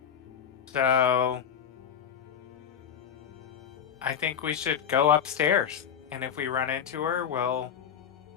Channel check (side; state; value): right; quieter; 8.3 dB